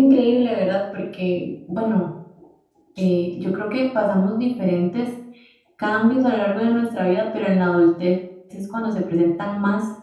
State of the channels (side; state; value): both; identical; correlation 1.00